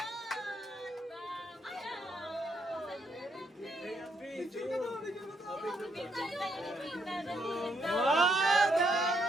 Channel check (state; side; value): normal; both; correlation 0.74